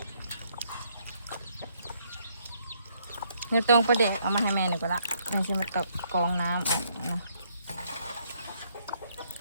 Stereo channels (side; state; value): both; inverted; correlation -0.70